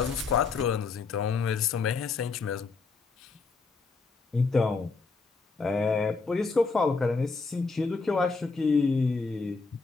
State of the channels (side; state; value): right; quieter; 4.4 dB